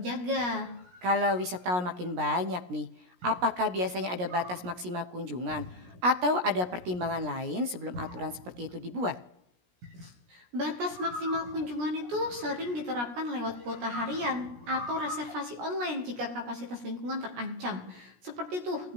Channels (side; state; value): left; late; 17 ms